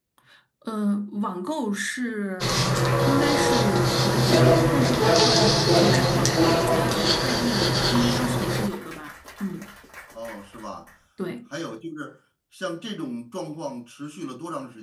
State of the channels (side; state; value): both; identical; correlation 1.00